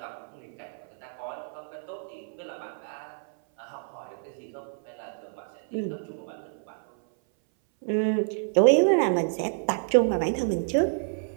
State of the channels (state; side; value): silent; left; 58 dB below the other